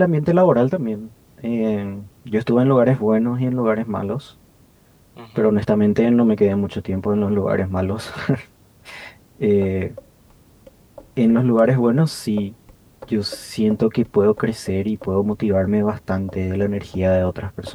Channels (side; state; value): both; identical; correlation 1.00